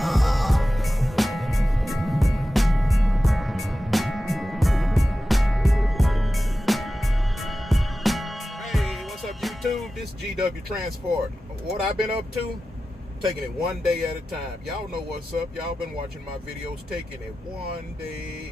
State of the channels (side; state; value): both; normal; correlation 0.94